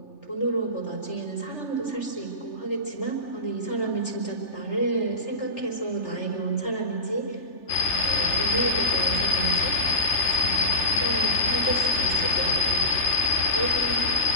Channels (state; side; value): late; right; 3.4 ms